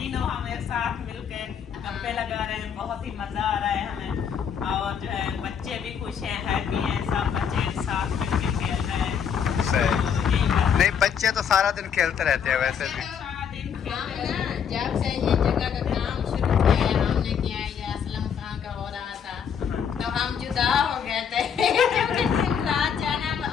हम एक साथ मिलकर गप्पे लगा रहे हैं, बहुत ही मजा आ रहा है हमें। और जो है बच्चे भी खुश हैं, हैप्पी हैं, सब बच्चे साथ मिलकर खेल रहे हैं। सही। नहीं, बच्चे तो सारा दिन खेलते रहते हैं वैसे भी। जब से ये जगह का काम शुरू किया है हमने किया है, ये असलम खां का हो रहा था, तो हम जुदा हो गए थे। दिन रात जाना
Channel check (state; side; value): quieter; right; 7.7 dB